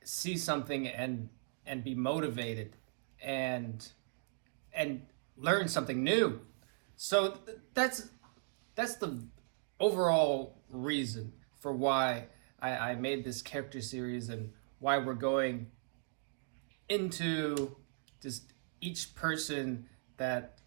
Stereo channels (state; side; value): silent; left; digital silence